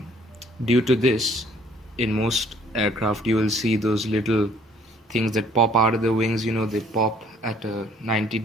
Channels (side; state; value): both; normal; correlation 0.59